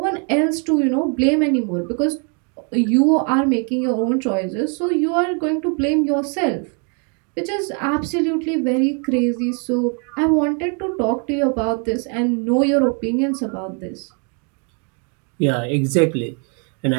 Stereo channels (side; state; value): left; quieter; 38.4 dB